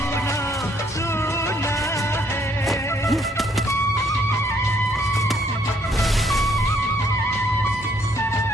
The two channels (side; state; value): both; normal; correlation 0.67